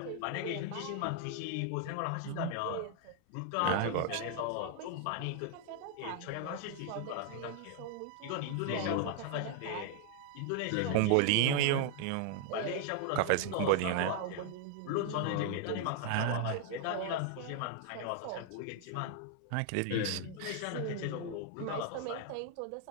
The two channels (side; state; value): both; different; correlation 0.00